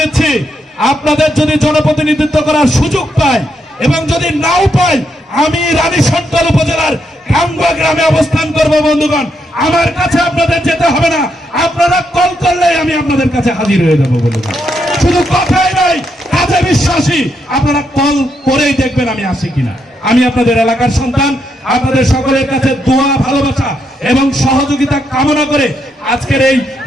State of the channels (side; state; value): both; normal; correlation 0.79